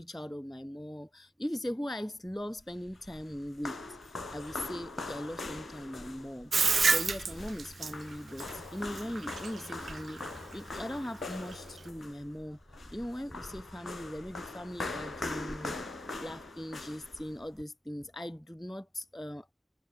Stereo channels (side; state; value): both; normal; correlation 0.91